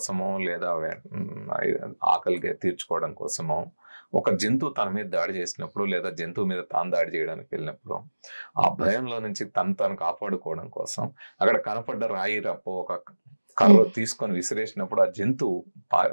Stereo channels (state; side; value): inverted; both; correlation -1.00